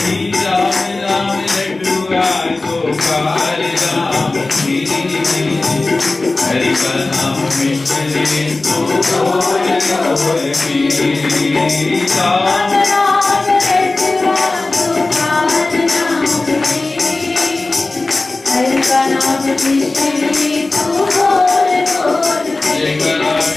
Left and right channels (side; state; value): right; quieter; 3.2 dB